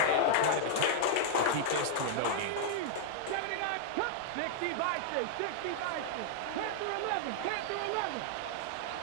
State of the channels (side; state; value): both; different; correlation -0.01